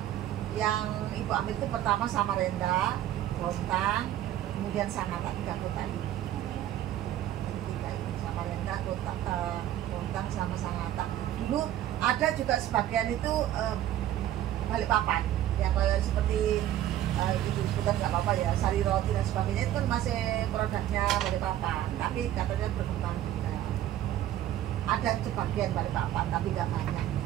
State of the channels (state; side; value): quieter; left; 12.5 dB